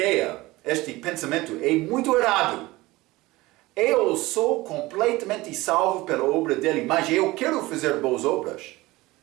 este pensamento, é muito errado. Eu sou completamente salvo pela obra dele, mas eu quero fazer boas obras.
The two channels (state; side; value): quieter; left; 19.9 dB